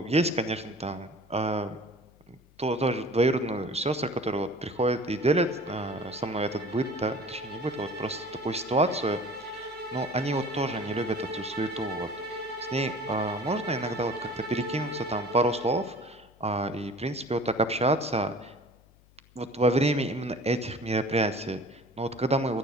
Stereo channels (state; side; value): noise; left; hum, 28 dB below the sound